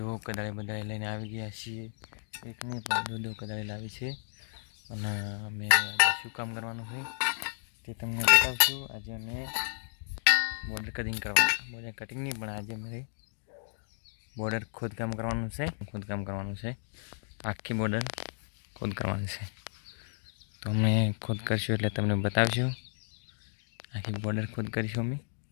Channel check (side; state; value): right; silent; digital silence